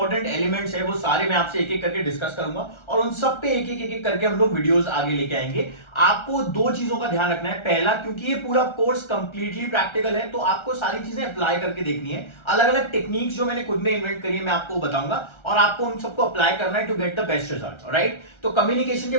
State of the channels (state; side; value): late; right; 1.3 ms